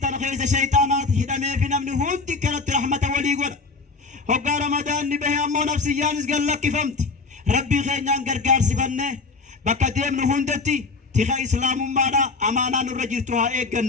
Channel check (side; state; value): right; quieter; 4.1 dB